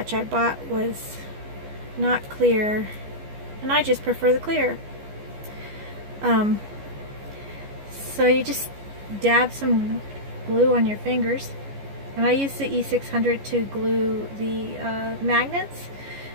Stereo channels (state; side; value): late; left; 14 ms